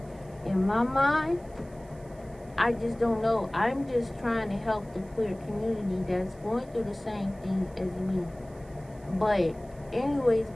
in my mind, I just don't know. I'm just trying to help the queer community that's going through the same thing as me. But anyways,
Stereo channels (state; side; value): noise; right; hiss, 28 dB below the sound